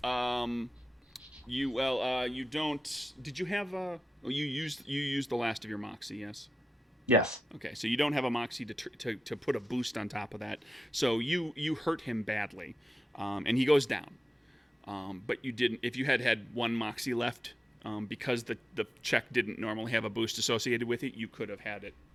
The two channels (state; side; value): normal; both; correlation 0.91